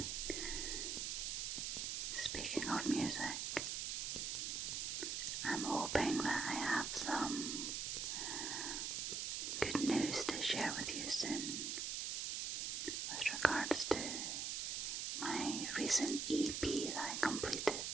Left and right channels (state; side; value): noise; right; hiss, 1 dB below the sound